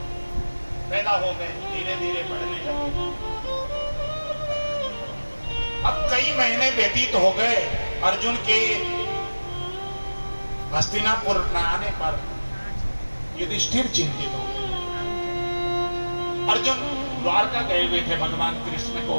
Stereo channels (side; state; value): both; inverted; correlation -1.00